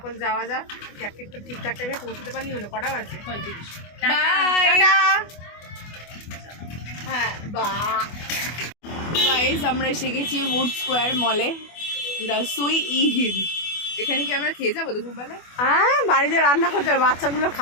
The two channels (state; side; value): late; right; 24 ms